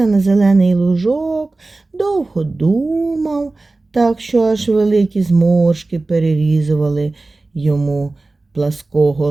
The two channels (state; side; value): quieter; left; 3.2 dB